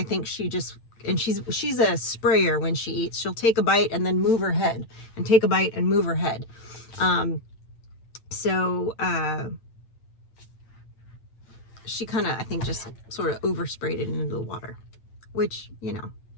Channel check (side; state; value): right; late; 8.8 ms